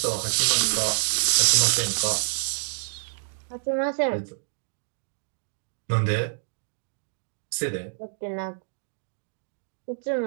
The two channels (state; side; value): silent; left; digital silence